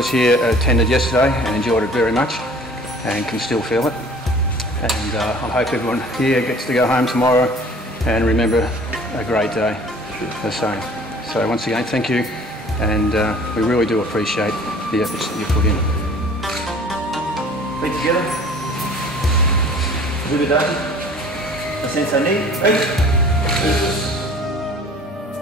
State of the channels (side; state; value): both; normal; correlation 0.49